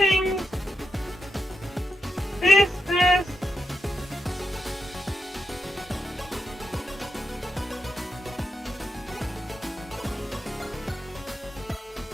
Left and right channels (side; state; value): both; normal; correlation 0.86